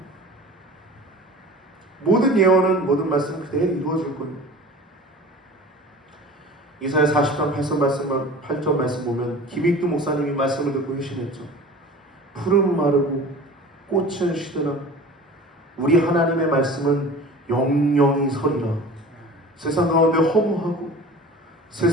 모든 예언은, 모든 말씀은 그대로 이루어질 거예요. 이사야 40장 8절 말씀 보면 김익두 목사님이 말씀을 듣고 회심했죠. 푸른 마르고 꽃은 시드라 우리 하나님의 말씀은 영영이 서리라. 세상 가운데 허무하고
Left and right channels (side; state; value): both; normal; correlation 0.40